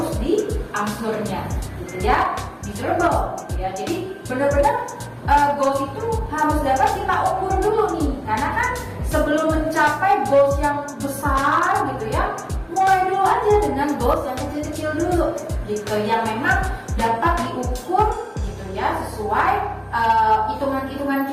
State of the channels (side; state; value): both; identical; correlation 1.00